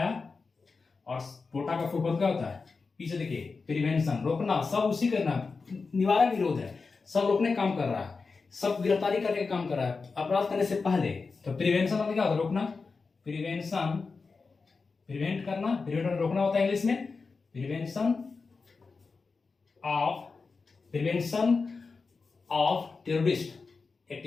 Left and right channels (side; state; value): right; quieter; 4.5 dB